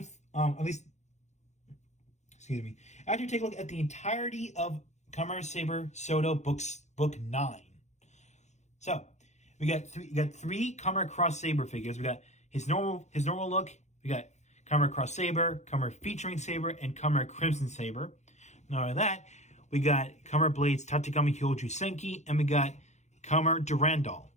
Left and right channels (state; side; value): late; right; 0.33 ms